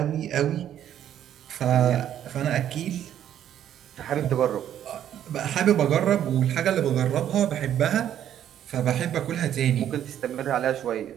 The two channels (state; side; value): quieter; left; 10.6 dB